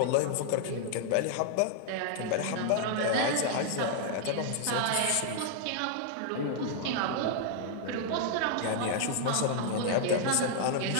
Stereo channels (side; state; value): both; different; correlation -0.01